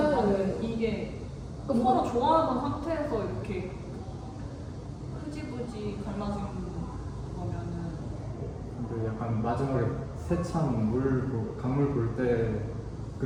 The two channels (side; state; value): both; identical; correlation 1.00